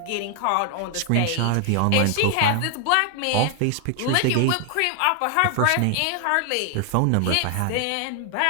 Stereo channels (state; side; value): different; both; correlation 0.00